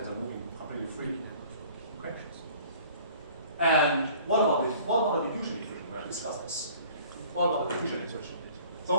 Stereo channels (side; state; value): both; inverted; correlation -0.50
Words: are moving completely freely. Okay. And what about the diffusion equation? We have discussed this. What about the diffusion equation?